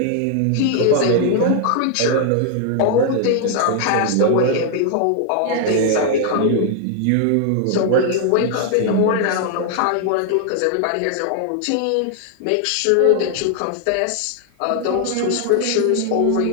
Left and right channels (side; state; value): both; different; correlation 0.00